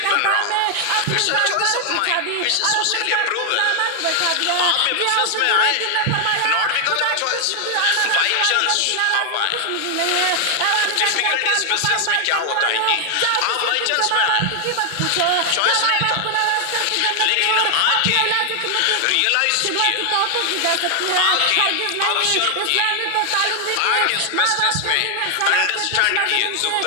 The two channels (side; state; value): both; different; correlation 0.00